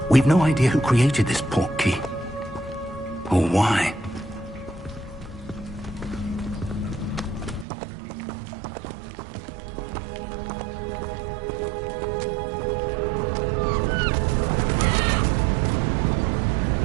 We've no idea who created this port key. Or why.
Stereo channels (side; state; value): left; drops out; at 7.7 s